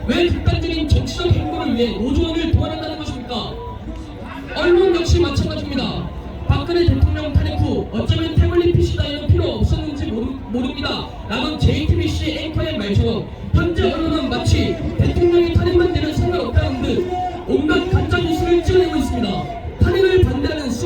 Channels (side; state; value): both; identical; correlation 1.00